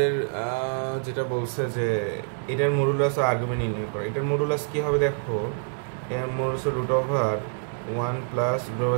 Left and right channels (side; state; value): left; silent; digital silence